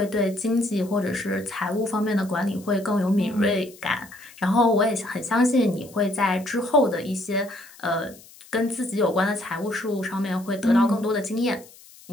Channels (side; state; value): left; noise; hiss, 22 dB below the sound